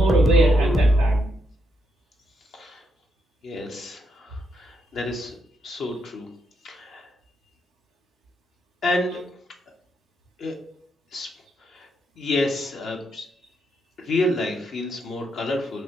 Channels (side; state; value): both; normal; correlation 0.79